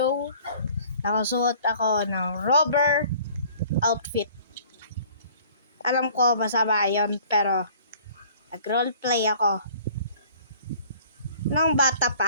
nakasuot ako ng rubber outfit. Alam ko masama yun, pero nag-roleplay ako nung bata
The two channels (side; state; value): both; inverted; correlation -0.52